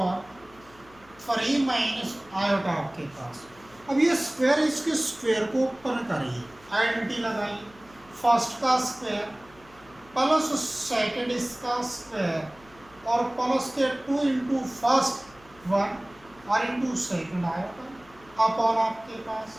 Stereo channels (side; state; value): left; noise; hum, 26 dB below the sound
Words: 3 माइनस आयोटा आपके पास। अब ये स्क्वायर, इसके स्क्वायर को ओपन करिए, आइडेंटिटी लगाइए, फर्स्ट का स्क्वायर प्लस सेकंड इसका स्क्वायर और प्लस के 2 इंटू फर्स्ट 1 और इंटू सेकंड आयोटा अपॉन आपके पास